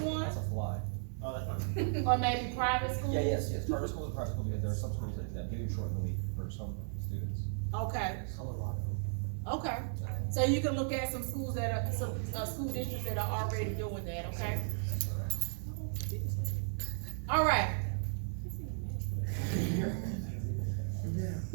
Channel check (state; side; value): silent; left; 54 dB below the other